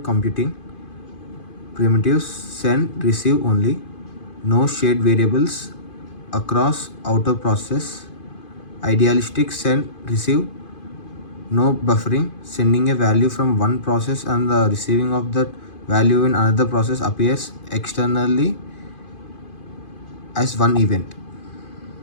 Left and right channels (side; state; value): right; late; 2.5 ms